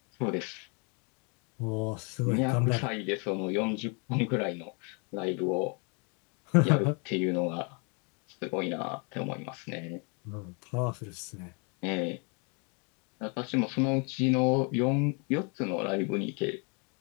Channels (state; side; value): quieter; right; 34.6 dB